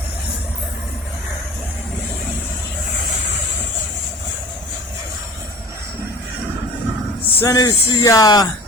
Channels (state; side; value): normal; both; correlation 0.42